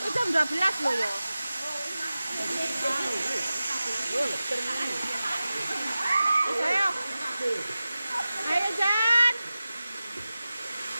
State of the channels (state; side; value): inverted; both; correlation -0.95